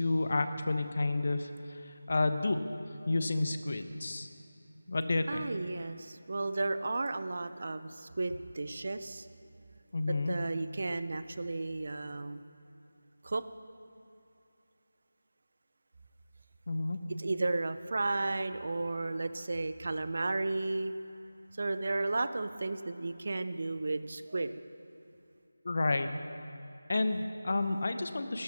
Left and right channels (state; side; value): inverted; both; correlation -0.95